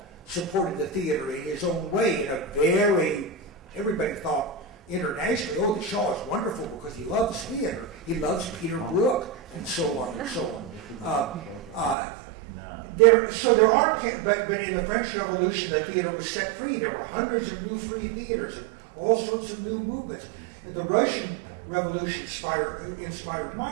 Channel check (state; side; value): drops out; left; at 12.0 s